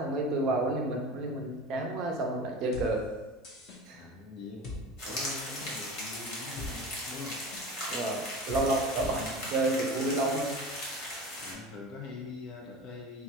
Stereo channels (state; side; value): normal; both; correlation 0.33